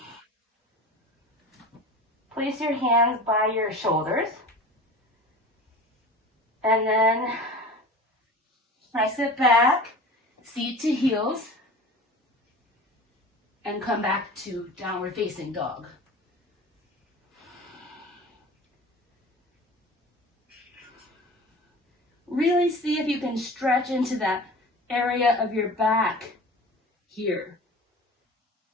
Place your hands by your shoulders. And then press it back, seat to heels, and come back to downward facing dog. Really see if you can stretch into that area of your back here.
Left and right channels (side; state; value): both; normal; correlation 0.37